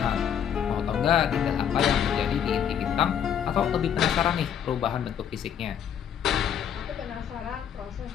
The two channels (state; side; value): quieter; right; 8.7 dB